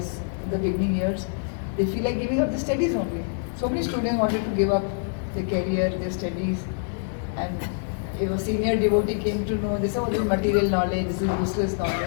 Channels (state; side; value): silent; right; 61 dB below the other